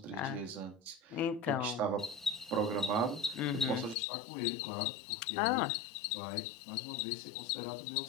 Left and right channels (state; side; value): drops out; right; at 4.0 s